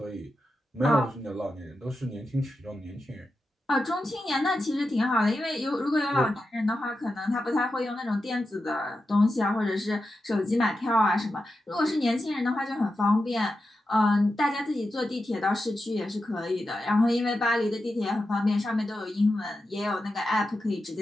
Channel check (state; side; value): normal; both; correlation 0.90